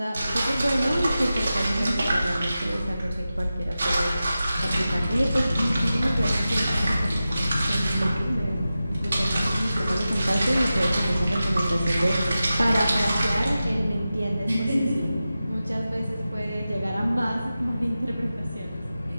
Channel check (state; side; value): inverted; both; correlation -0.93